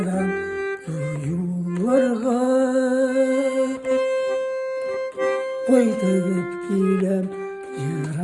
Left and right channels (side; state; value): both; identical; correlation 1.00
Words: duyularga Koydup gilem